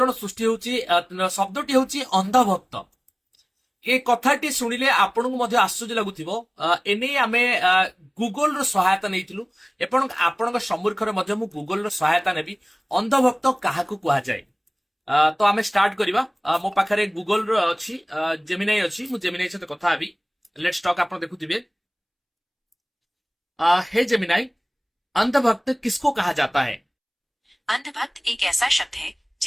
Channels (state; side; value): identical; both; correlation 1.00